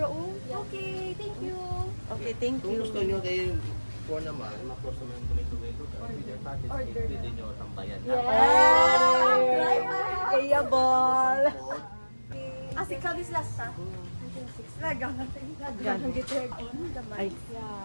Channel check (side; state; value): both; inverted; correlation -1.00